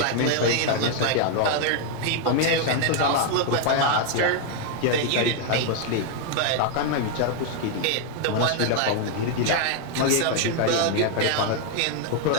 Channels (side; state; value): both; different; correlation 0.00